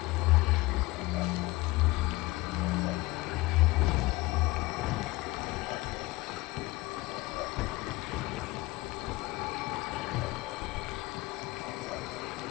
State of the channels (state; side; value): quieter; right; 21.0 dB